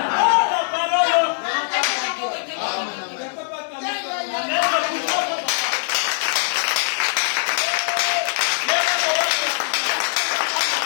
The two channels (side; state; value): right; silent; digital silence